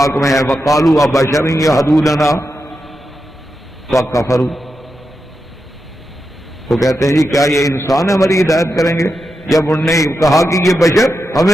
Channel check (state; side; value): normal; both; correlation 0.88